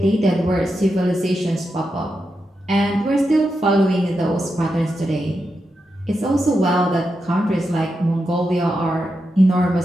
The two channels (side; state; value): both; normal; correlation 0.87